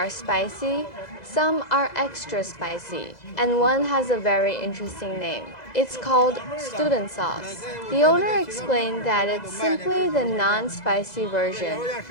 spicy, some are extra spicy, and one has a very interesting name. It's called student sauce. The owner explained that it's simply the non-spicy version,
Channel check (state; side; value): late; right; 2.0 ms